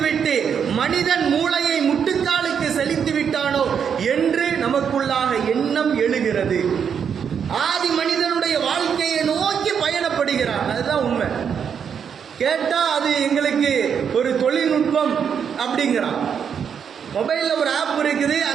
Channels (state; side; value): quieter; left; 7.4 dB